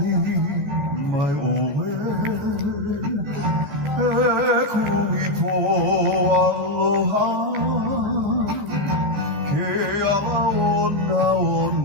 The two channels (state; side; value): late; left; 14 ms